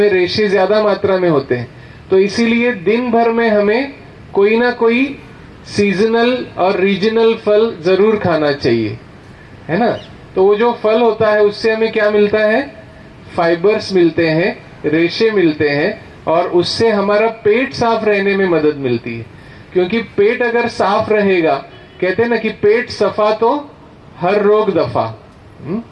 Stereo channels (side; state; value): both; identical; correlation 1.00